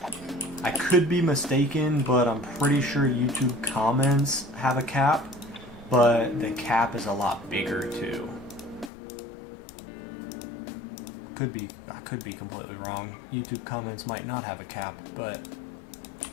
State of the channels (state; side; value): drops out; right; at 8.9 s